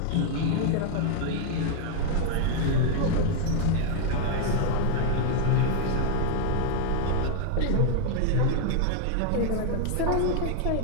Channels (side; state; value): both; different; correlation 0.00